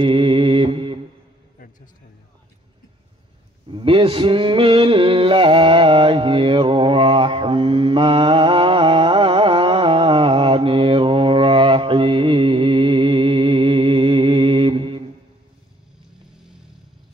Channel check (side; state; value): both; normal; correlation 0.58